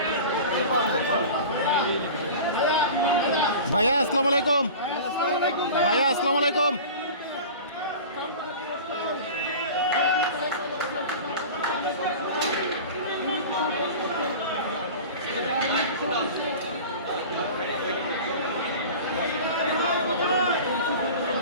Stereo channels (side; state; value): both; inverted; correlation -0.36